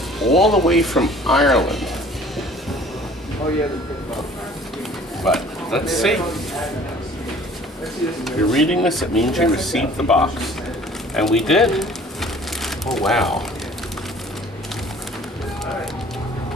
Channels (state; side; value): normal; both; correlation 0.51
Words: all the way from Ireland. Oh yeah, but let's see. If you're reading this, it means you received the box. And we did. Oh wow.